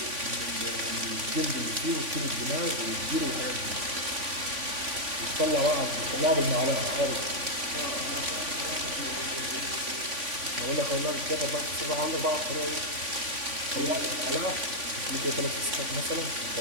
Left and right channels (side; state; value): left; late; 3.5 ms